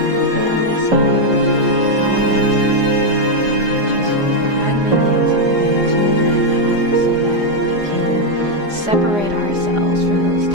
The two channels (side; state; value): left; late; 4.9 ms